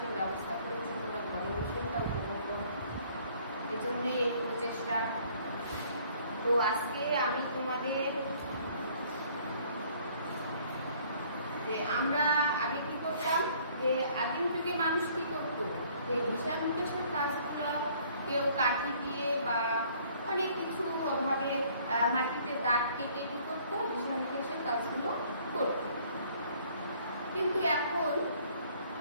ব্যবস্থা করেছি তোমরা ঘরে বসেই তা উপভোগ করো, এই জন্যে এই প্রচেষ্টা। তো আজকে আমি তোমাদের যে আমরা আগে কি করতাম, যে আদিম যুগে মানুষ কি করতো, যে হিসাব নিকাশের কাজগুলো কেউ কাঠি দিয়ে বা অনেক কিছু ভাবে মাটিতে দাগ কেটে কি করতো, হিসাব নিকাশের কাজগুলো করত। কিন্তু এখন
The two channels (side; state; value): both; inverted; correlation -0.58